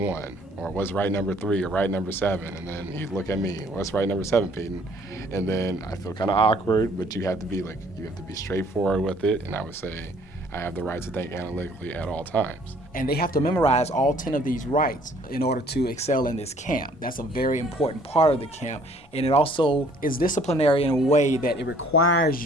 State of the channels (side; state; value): both; normal; correlation 0.59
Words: Or what's right number 3? Or right number 7? And then he'd look at me, what's right number 7, Peyton? And then I feel kind of awkward, but you have to be straightforward with it, and I would say, I have the right to think analytically at all times. And they have to memorize all 10 of these rights in order to excel in this camp. That's a very important part of the camp. And it also is disciplinary in a way that it requires